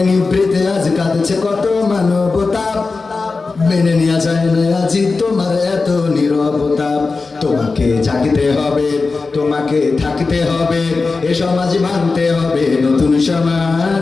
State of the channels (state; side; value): quieter; right; 4.1 dB